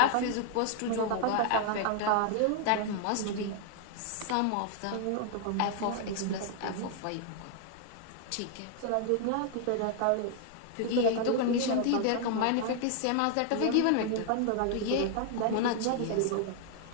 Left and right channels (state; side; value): different; both; correlation 0.00